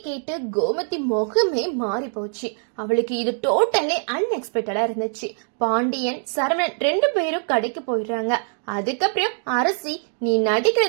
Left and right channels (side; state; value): left; silent; 61 dB below the other